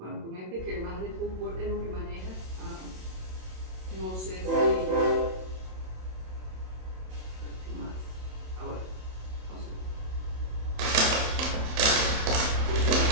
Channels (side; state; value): left; late; 27 ms